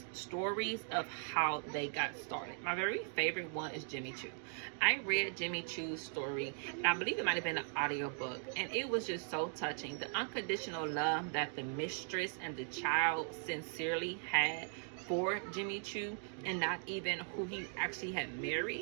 stories of how they got started. My very favorite one is Jimmy Choo. I read Jimmy Choo's story, and I believe it might have been an audiobook, and it was just so touching. The unconditional love that the mistress and the child sincerely had for Jimmy Choo, and not even who he actually had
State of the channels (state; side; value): silent; left; 52 dB below the other